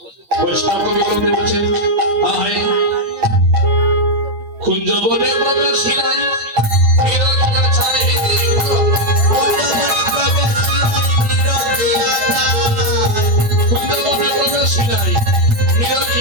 বৈষ্ণব কবি বলছেন আয় কুঞ্জ বনে প্রবেশিলাই বিরকিয়া ছাই কুঞ্জ বনে প্রবেশিলাই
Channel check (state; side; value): late; left; 9.1 ms